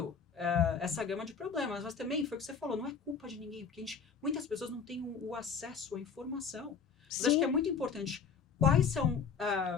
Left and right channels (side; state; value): right; quieter; 6.1 dB